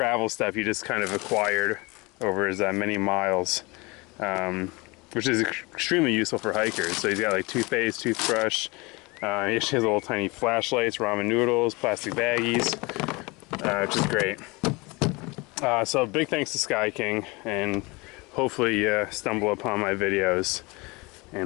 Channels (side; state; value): right; quieter; 25.6 dB